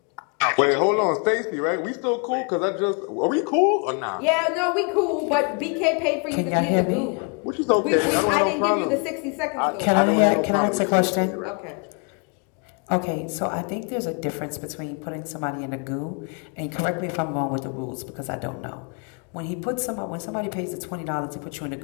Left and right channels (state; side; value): quieter; right; 36.2 dB